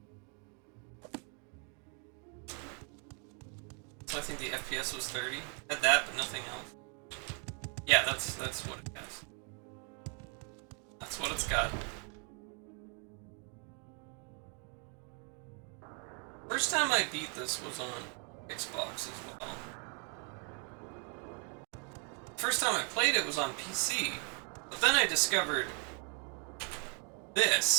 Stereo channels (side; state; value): left; quieter; 38.8 dB